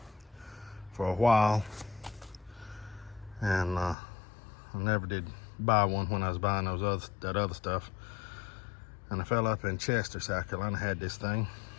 for a while, and I never did buy one when I was buying that other stuff. And I fell up in Chester, South Carolina, had this thing,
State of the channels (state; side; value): drops out; right; at 4.0 s